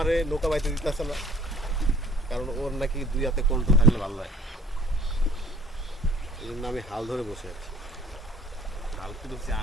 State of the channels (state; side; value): normal; both; correlation 0.53